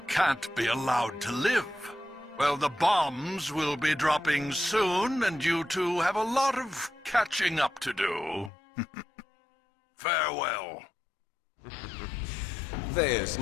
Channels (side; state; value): right; drops out; at 8.5 s